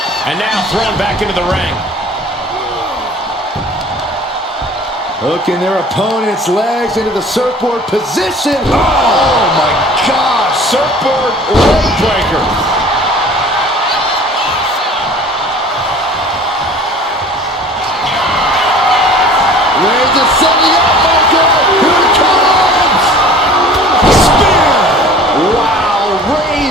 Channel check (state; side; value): normal; both; correlation 0.47